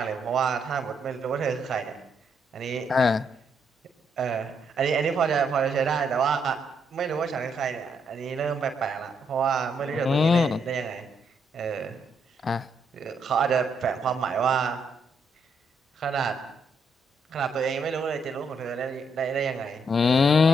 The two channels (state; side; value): normal; both; correlation 0.75